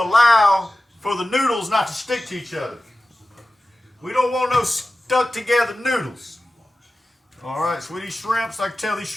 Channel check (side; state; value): both; normal; correlation 0.95